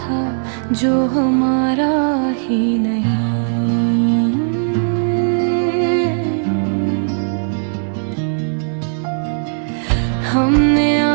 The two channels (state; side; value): silent; left; digital silence